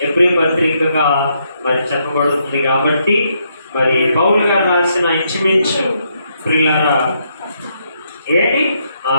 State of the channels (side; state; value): both; inverted; correlation -0.76